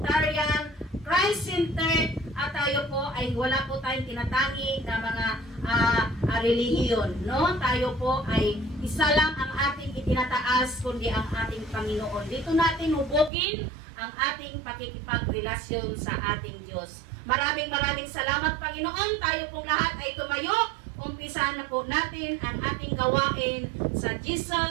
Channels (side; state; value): left; drops out; at 13.3 s